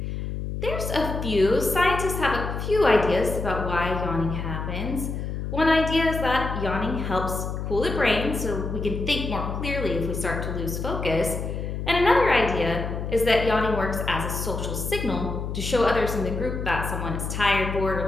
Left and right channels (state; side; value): noise; left; hum, 4 dB below the sound